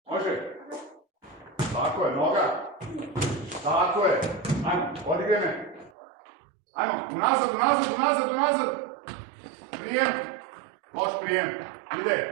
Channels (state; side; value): drops out; left; at 5.9 s